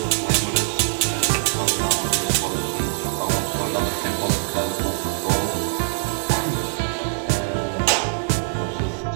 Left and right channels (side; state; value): left; silent; 60 dB below the other